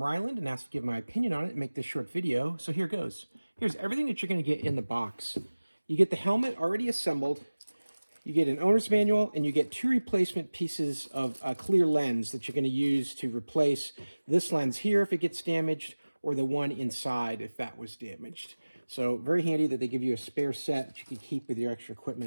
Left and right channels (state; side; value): inverted; both; correlation -1.00